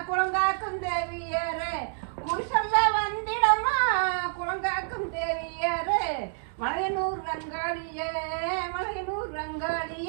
குளங்காக்கும் தேவியரே குறிசொல்ல வந்திடமா குளங்காக்கும் தேவியரே மலையனூர் ரங்காளியே மலையனூர்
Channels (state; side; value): silent; left; digital silence